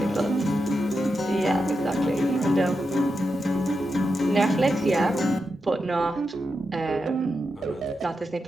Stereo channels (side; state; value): both; normal; correlation 0.87